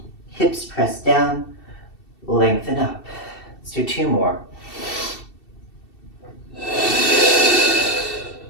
Hips press down, lengthen up. Let's do 2 more.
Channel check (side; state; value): right; late; 2.7 ms